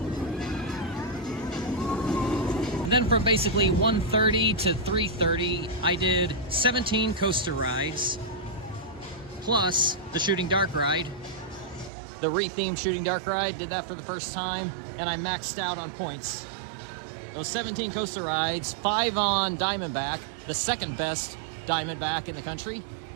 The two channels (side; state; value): left; drops out; at 11.9 s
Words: And then from basically 1:30 to 3:30, I did 17 coaster rides, plus the Shooting Dark ride, the re-themed Shooting Dark ride. Did that for the first time, and I maxed out on points. Those 17 coaster rides, 5 on Diamondback, the second best Diamondback in the country,